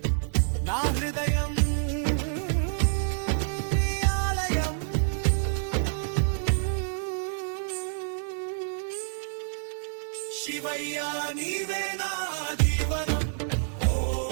నా హృదయం నీ ఆలయం శివయ్య నీవే నాది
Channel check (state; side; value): silent; left; digital silence